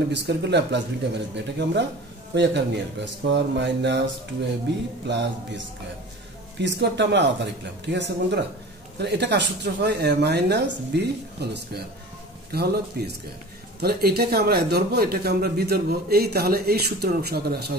বি স্কোয়ার করলে প্লাস বিটা মাইনাস বি। এটাকে আমরা ওই আকারে নিয়ে আসবো, square minus 2ab plus B square. P স্কোয়ারটা আমরা আলাদা লিখলাম, ঠিক আছে বন্ধুরা? তাহলে এটা কার সূত্র হয়? এ মাইনাস বি হোল স্কোয়ার, এটা হলো পি স্কোয়ার। তাহলে এটাকে আমরা এ ধরবো, এটাকে আমরা বি ধরবো। তাহলে এই সূত্রের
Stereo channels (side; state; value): both; normal; correlation 0.38